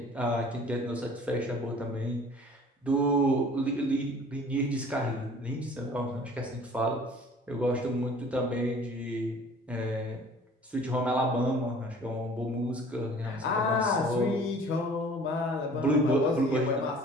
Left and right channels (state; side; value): normal; both; correlation 0.49